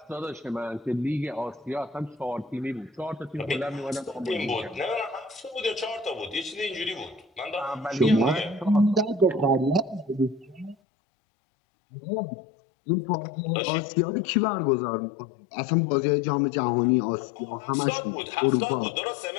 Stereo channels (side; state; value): right; drops out; at 10.8 s